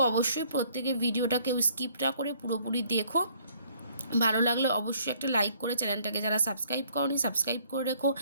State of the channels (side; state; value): both; inverted; correlation -0.62